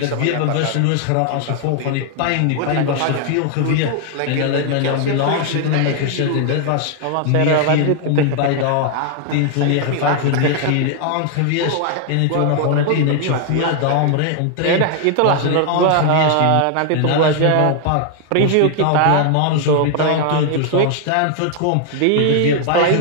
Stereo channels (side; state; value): both; different; correlation 0.00